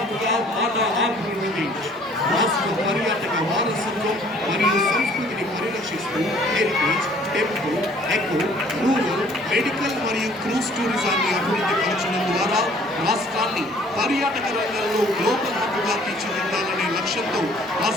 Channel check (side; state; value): both; normal; correlation 0.56